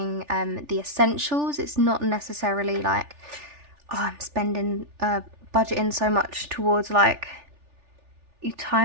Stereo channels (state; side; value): late; left; 3.4 ms